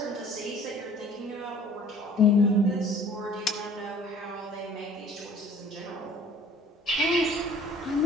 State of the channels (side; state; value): both; normal; correlation 0.52